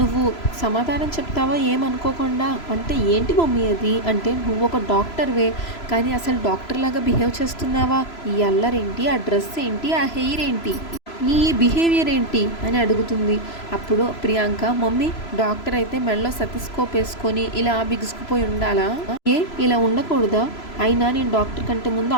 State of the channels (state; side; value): late; right; 3.0 ms